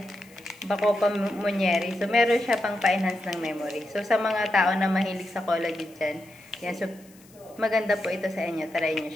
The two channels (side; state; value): left; noise; hiss, 26 dB below the sound